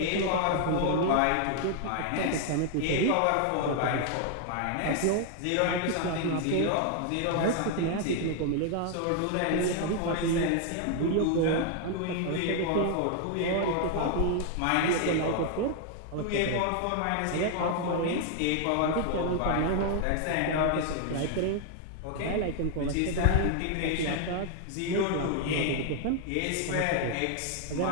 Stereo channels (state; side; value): different; both; correlation 0.00